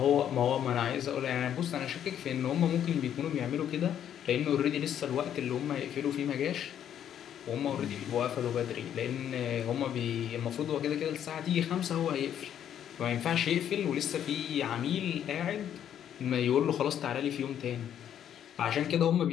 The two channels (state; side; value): quieter; right; 9.8 dB